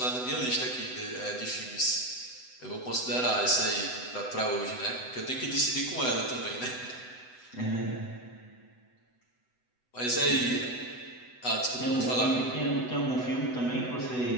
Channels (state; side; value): late; right; 8.0 ms